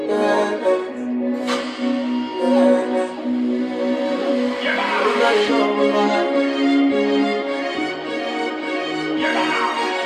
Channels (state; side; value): identical; both; correlation 1.00